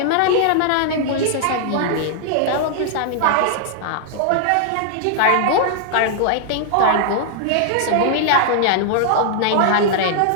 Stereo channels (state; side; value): different; both; correlation -0.01